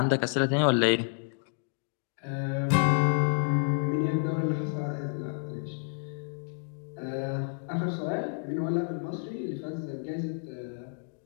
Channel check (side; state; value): right; silent; digital silence